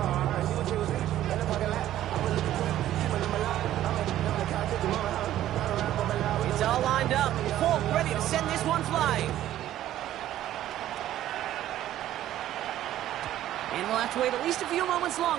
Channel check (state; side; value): quieter; left; 12.9 dB